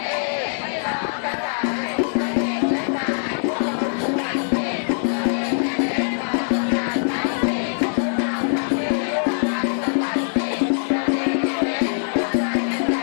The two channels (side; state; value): right; silent; digital silence